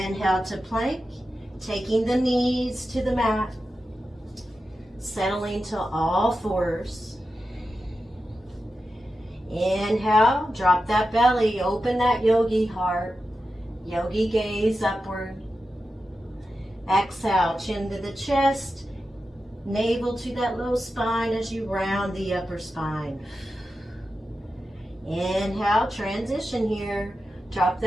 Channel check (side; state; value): both; normal; correlation 0.91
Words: to plank. Taking the knees to the mat, settling to all 4s. Inhale, drop that belly, open that yogi heart, yogi gaze upward. Exhale, chin to the chest, navel to that low spine as you round the upper spine. Inhale, transition here. Drop